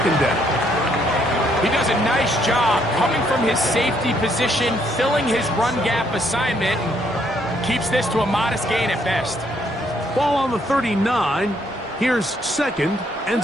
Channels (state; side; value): normal; both; correlation 0.70